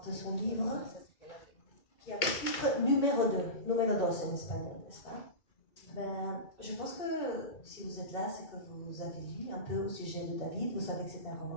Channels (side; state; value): right; late; 2.2 ms